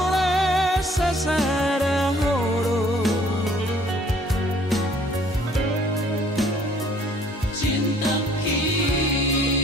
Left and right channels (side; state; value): both; normal; correlation 0.58